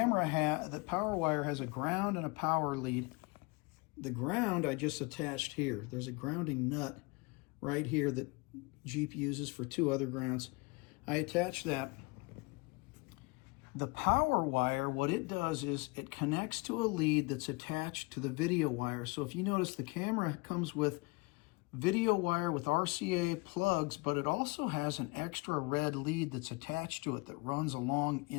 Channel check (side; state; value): right; quieter; 26.5 dB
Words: power wire has a ground and a power lead. The ground I just attached here. There's a grounding nut right here that Jeep uses for two other grounds. I attach that. The power wire, what it does is it connects to a lead that's attached to the video wire. So if you notice, the camera comes with video wire with RCA plugs, but it also has an extra red lead that's attached to it that runs along